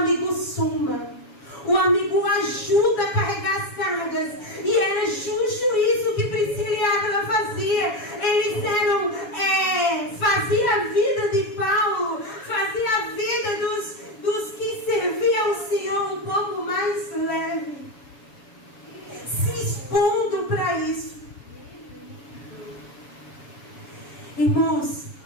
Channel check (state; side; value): late; right; 7.1 ms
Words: soma, o amigo ajuda a carregar as cargas. E era justo isso que Priscila e Áquila fazia. Eles fazia a vida de Paulo, fazia a vida dos que serviam ao Senhor um pouco mais leve, se expondo para isso. Irmãos,